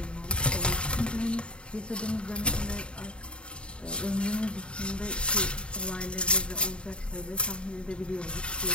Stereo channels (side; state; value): right; late; 0.054 ms